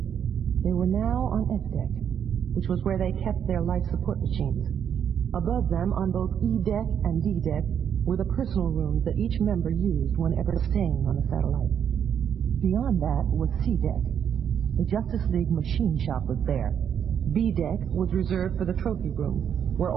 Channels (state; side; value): quieter; left; 8.4 dB